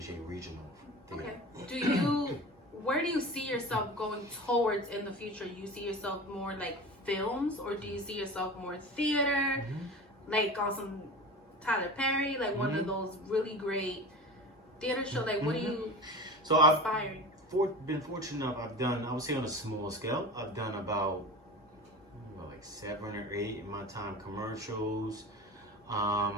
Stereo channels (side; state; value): both; normal; correlation 0.32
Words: regional theater. Okay. Where do you see yourself going towards in the future? Do you see yourself more like films, or do you see yourself more theater, like on some Tyler Perry, like one of those really great theater shows? Like, what do you aspiring? I've been fortunate enough. I would say on a small scale, I've done about like 7 or 8 in my time commercials.